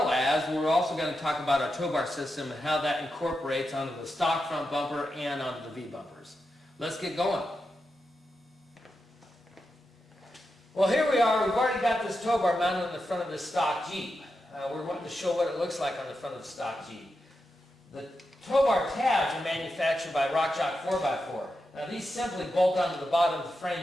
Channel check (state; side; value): normal; both; correlation 0.88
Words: as, we're also going to talk about our tow bar system and how that incorporates onto the stock front bumper and onto the V-bumpers. Let's get going. Well, here we are. We've already got this tow bar mounted on the front of this stock Jeep. We're wanting to show what it looks like on the front of the stock Jeep. The tow bar tabs are manufactured by RockChalk 4x4. Now these simply bolt onto the bottom of the